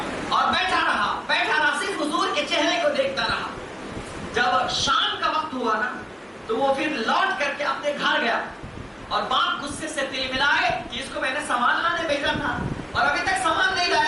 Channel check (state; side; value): identical; both; correlation 1.00